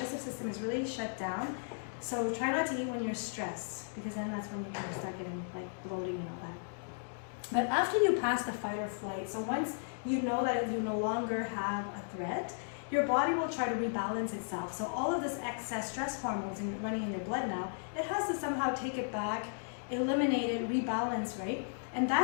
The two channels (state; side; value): silent; right; digital silence